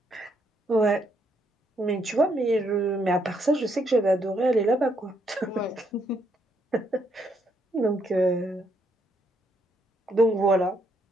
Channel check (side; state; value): both; normal; correlation 0.74